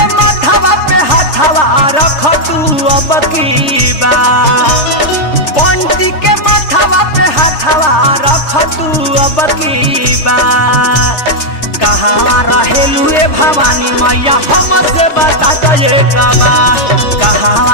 माथावा पे हाथावा रख तू अब की बा बंटी के माथावा पे हाथावा रख तू अब की बा कहाँ रहेलू ए भवानी मैया हमसे बता दो ये कबा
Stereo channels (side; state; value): right; late; 3.3 ms